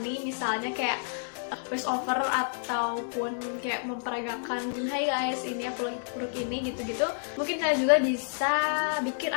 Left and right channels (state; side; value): silent; right; digital silence